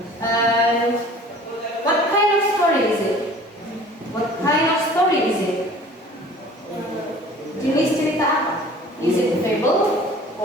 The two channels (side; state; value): both; normal; correlation 0.47